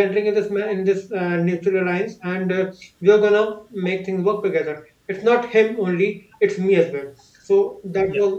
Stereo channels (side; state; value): both; identical; correlation 1.00